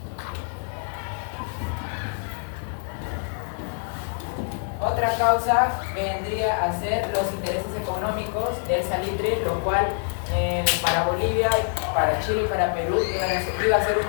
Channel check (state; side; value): silent; right; 56 dB below the other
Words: Otra causa vendría a ser los intereses económicos del salitre, lo cual para Bolivia, para Chile y para Perú iba a ser un